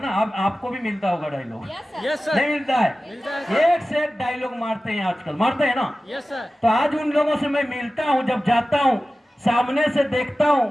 अब आपको भी मिलता होगा डायलॉग? Yes sir. नहीं मिलता है? मिलता है। एक से एक डायलॉग मारते हैं आजकल, मारते हैं ना? Yes sir. तो आज उन लोगों से मैं मिलता हूं, जब जाता हूं सामने से देखता हूं,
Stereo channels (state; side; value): normal; both; correlation 0.95